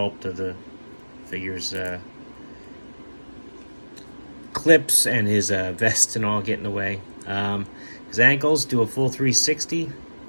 of the figure's clips and his vest and all get in the way. His ankles do a full 360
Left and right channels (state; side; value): inverted; both; correlation -1.00